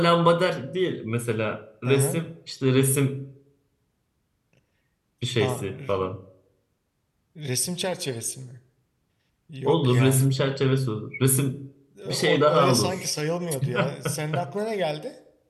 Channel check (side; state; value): both; identical; correlation 1.00